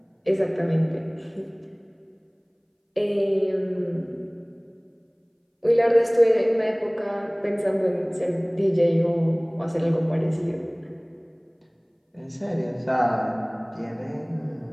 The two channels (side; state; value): both; identical; correlation 1.00